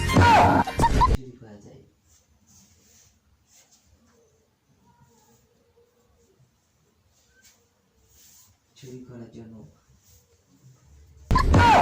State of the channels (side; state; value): both; identical; correlation 1.00